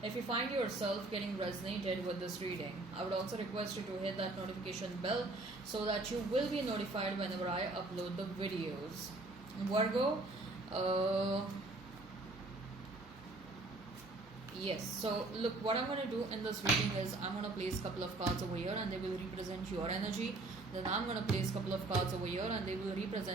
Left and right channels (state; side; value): quieter; left; 3.0 dB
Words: if you find yourself getting resonated with this reading. I would also request you to hit that notification bell so that you will be notified whenever I upload the videos. Virgo, yes, so look, what I'm going to do in this reading is I'm going to place a couple of cards over here and they will represent your energy. Then I'm going to place a couple of cards over here and they will